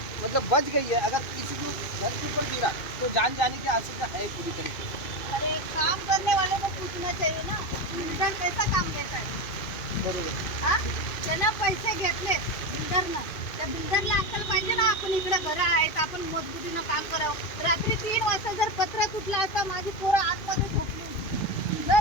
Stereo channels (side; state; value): right; late; 2.5 ms